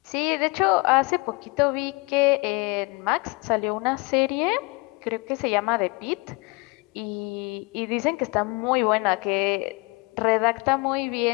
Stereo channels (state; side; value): quieter; right; 26.8 dB